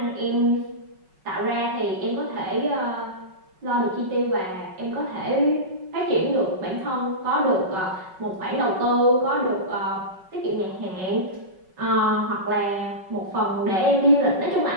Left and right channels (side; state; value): left; late; 5.3 ms